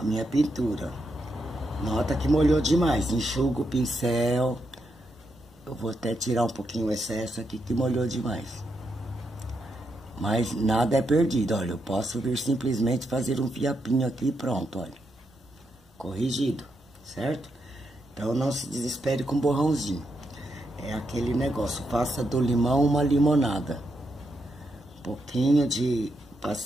minha pintura. Nota que molhou demais, enxugo o pincel. Eu vou até tirar um pouquinho o excesso aqui que molhou demais. Mas nada é perdido, olha. Eu posso vir simplesmente fazer um fiapinho aqui e pronto, olha. Corrigido, certo? Então, não se desespere com borrãozinho. É aquele negócio, faça do limão uma limonada. Um pouquinho de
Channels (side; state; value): both; normal; correlation 0.82